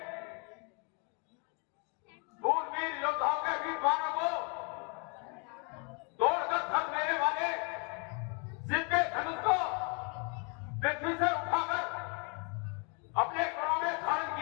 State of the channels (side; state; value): right; quieter; 35.1 dB